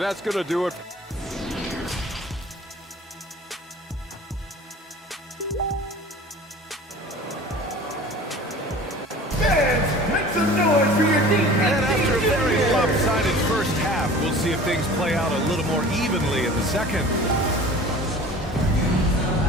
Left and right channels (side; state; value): both; normal; correlation 0.43